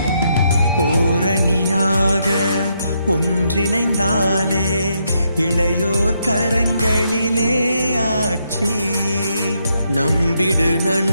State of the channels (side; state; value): both; inverted; correlation -0.78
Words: ஓரணியாக ஒன்றிணைந்தாலே இளையோர் கரங்களிலே ஆட்சி. நம்பிடு